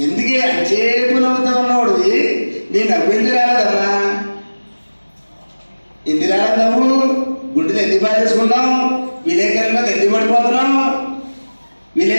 ఎందుకే అచేపు నవ్వుతా ఉన్నవాడు నేను నవ్వింది రాలేదన్నా. ఎందుకు రాలేదు నవ్వు? గుండెలు ఎందుకు బాధేసుకున్నావు? విలేకరుల మీద ఎందుకు పడిపోతున్నావు?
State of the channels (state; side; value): inverted; both; correlation -1.00